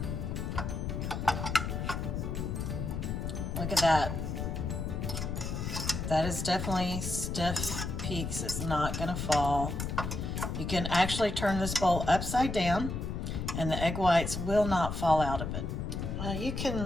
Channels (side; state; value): left; noise; rumble, 3 dB below the sound